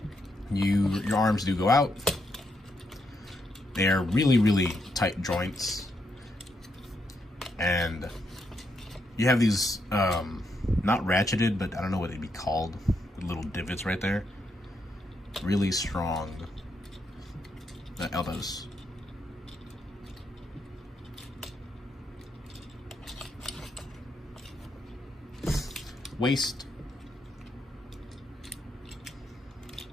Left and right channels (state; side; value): normal; both; correlation 0.79